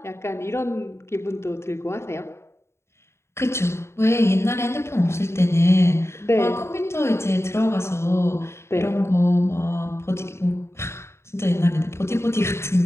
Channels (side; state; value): right; late; 0.13 ms